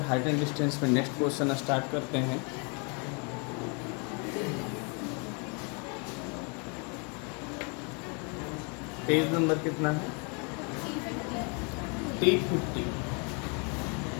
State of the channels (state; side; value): quieter; right; 34.6 dB